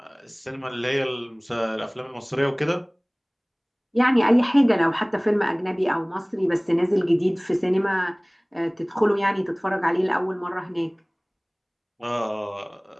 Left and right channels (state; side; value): identical; both; correlation 1.00